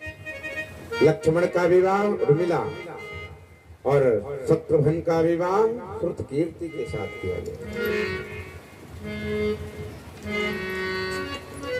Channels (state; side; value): identical; both; correlation 1.00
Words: लक्ष्मण का विवाह उर्मिला और शत्रुघ्न का विवाह श्रुतकीर्ति के साथ किया गया।